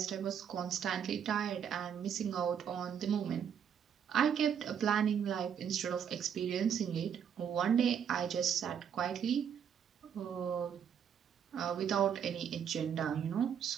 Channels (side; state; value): left; quieter; 8.2 dB